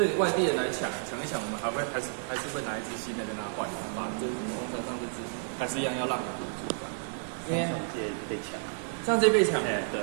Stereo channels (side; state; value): left; silent; digital silence